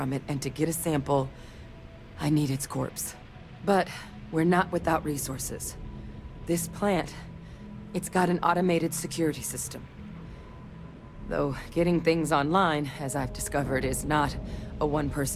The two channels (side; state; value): both; identical; correlation 1.00